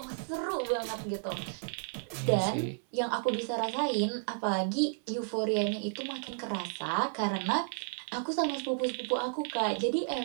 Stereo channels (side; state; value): left; silent; digital silence